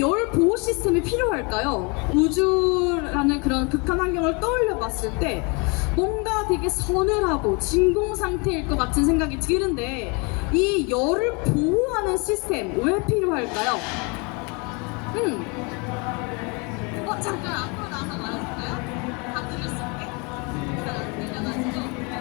보호 시스템이 필요할까요? 우주라는 그런 극한 환경을 떠올려 봤을 때 뭔가 되게 서늘하고 진공 상태일 것 같은 생각이 드는데 이 열을 보호하는 시스템 왜 필요할까요? 잠깐 앞으로 나와서 말해줄까요? 다 들을 수 있게? 잘안 들려가지고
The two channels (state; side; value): quieter; right; 31.1 dB